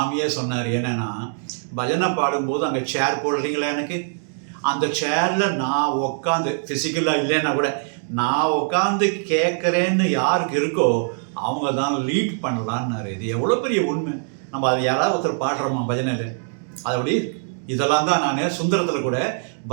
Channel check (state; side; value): silent; left; digital silence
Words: சொன்னார். என்னென்னா, பஜனை பாடும்போது அங்கே சேர் போடுறீங்களா, எனக்கு அந்த சேரில் நான் உட்காந்து, ஃபிசிக்கலாக இல்லைன்னா கூட நான் உட்காந்து கேட்குறேன்னு யாருக்கு இருக்கோ அவங்க தான் லீட் பண்ணலான்னாரு. இது எவ்வளோ பெரிய உண்மை. நம்ம அது யாராவது ஒருத்தர் பாடுறோமா பஜனையில்? அதபடி இதெல்லாம் தான் நான் சுந்தரத்தில் கூட